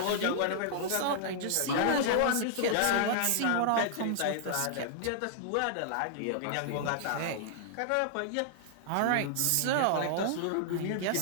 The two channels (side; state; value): both; different; correlation -0.01